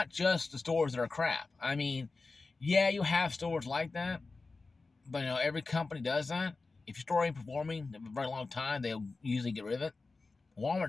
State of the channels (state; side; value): quieter; right; 3.8 dB